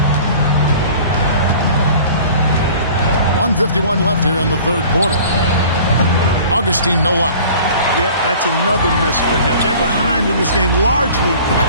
1:51 left here in the third quarter. Augustine, no luck. Yep, that's another miss for him. They're behind in this game largely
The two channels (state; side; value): inverted; both; correlation -0.46